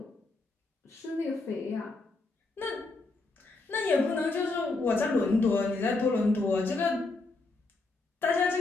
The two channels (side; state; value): right; quieter; 3.4 dB